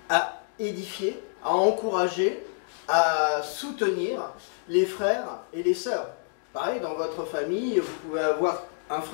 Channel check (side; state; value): right; silent; digital silence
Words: à édifier, à encourager, à soutenir les frères et les sœurs. Pareil, dans votre famille, vous pouvez avoir un